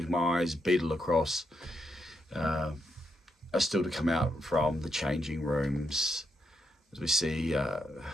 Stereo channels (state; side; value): normal; both; correlation 0.81